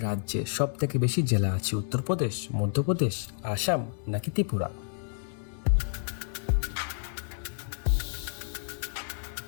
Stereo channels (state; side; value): silent; right; digital silence